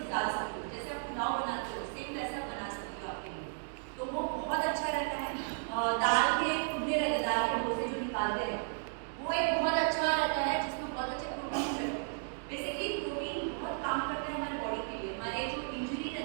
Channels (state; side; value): silent; left; digital silence